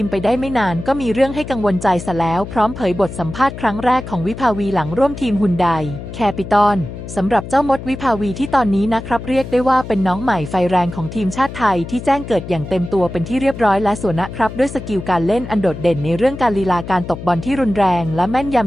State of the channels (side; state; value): left; noise; hum, 10 dB below the sound